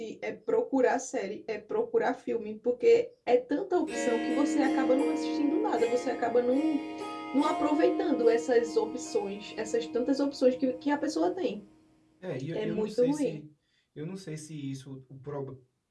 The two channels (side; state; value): both; identical; correlation 1.00